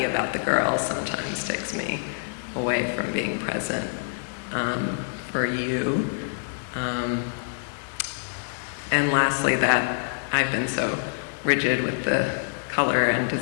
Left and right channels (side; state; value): right; silent; digital silence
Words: about the girls sometimes takes me away from being present for you. And lastly, that I've been so rigid with the color and